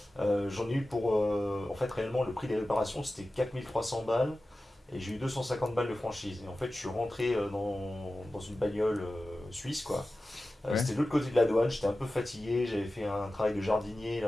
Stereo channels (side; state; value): both; normal; correlation 0.95